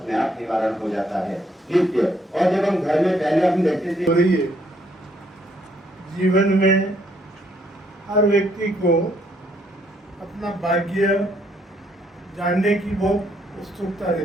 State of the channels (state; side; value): normal; both; correlation 0.69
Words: आप निवारण हो जाता है नित्य। और जब हम घर में पहले हम देखते थे, जीवन में हर व्यक्ति को अपना भाग्य जानने की बहुत उत्सुकता